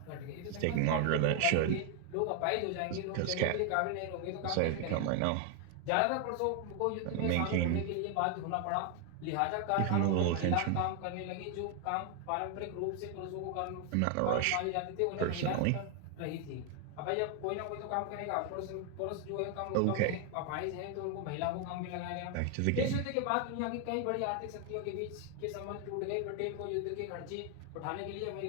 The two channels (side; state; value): both; different; correlation 0.01